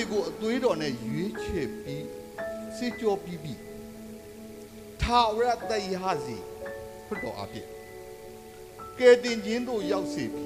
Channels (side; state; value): both; identical; correlation 1.00